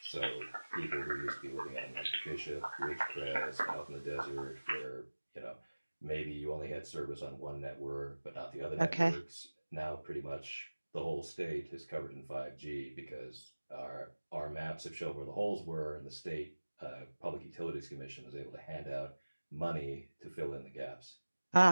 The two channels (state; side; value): inverted; both; correlation -1.00